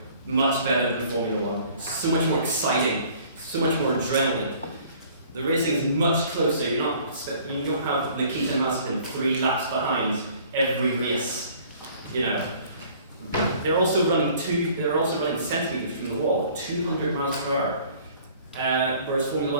much better than Formula 1. So much more exciting, so much more adrenaline. The racing is much closer. You don't have Nikita Mazepin 3 laps behind every race. They're also running centimeters from the wall, 200 miles per hour. Whereas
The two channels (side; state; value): both; inverted; correlation -0.54